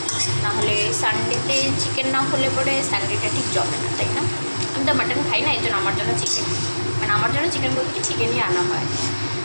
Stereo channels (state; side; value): inverted; both; correlation -1.00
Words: নাহলে সানডেতে চিকেন না হলে পরে সানডেটা ঠিক জমে না, তাই না? আমি তো মাটন খাই না, এই জন্য আমার জন্য চিকেন, মানে আমার জন্য চিকেন বলতে কি চিকেনই আনা হয়।